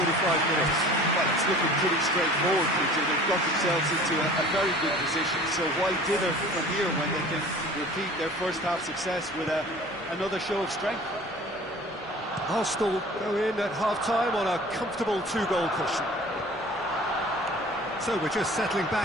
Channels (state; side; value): normal; both; correlation 0.45